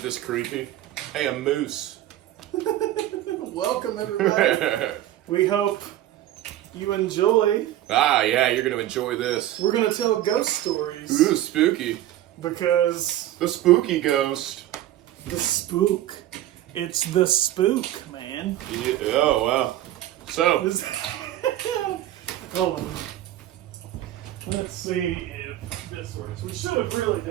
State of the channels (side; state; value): left; quieter; 13.5 dB